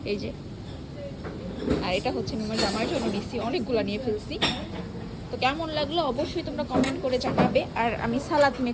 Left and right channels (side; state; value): both; identical; correlation 1.00